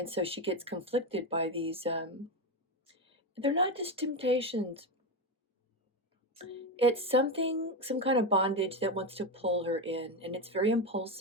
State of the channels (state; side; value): normal; both; correlation 0.13